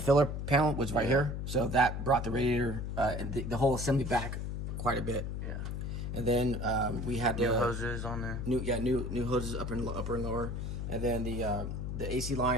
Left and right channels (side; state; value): left; noise; hum, 4 dB below the sound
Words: filler panel was right here. So that brought the radiator and the whole assembly back quite a bit. Yeah. And then we had New hoses on there. new hoses upper and lower, and then the AC